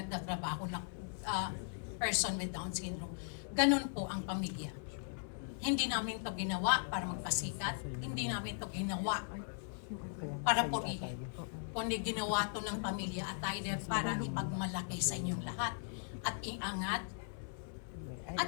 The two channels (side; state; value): right; silent; 52 dB below the other